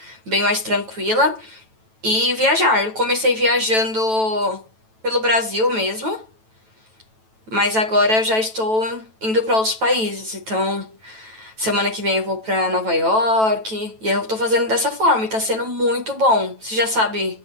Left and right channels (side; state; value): left; late; 9.1 ms